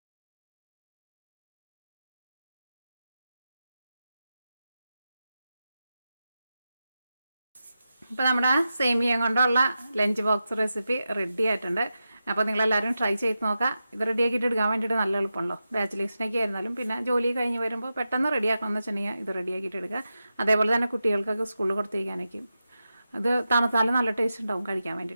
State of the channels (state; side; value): inverted; both; correlation -0.91